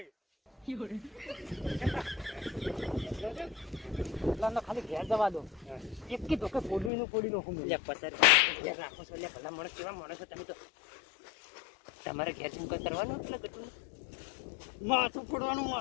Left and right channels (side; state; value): right; drops out; at 6.9 s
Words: ખાલી ઘેર જવા દો એક કી તો કે પોડી નાખું લે પચાસ ઘેર રાખો છો લે ભલા માણસ કેવા માણસ છો તમે તો તમારે ઘેર શું કઈ કરવાનું એટલે કટું માથું ફોડવાનું